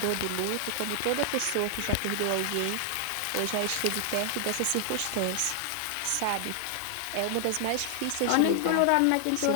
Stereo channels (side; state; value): both; different; correlation 0.00